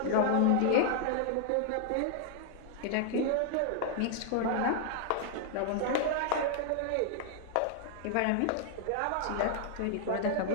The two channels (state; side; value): different; both; correlation 0.00